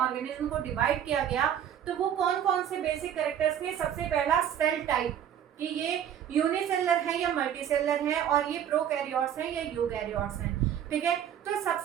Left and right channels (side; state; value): left; quieter; 9.6 dB